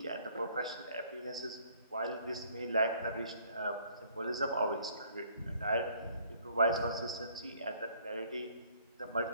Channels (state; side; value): inverted; both; correlation -0.60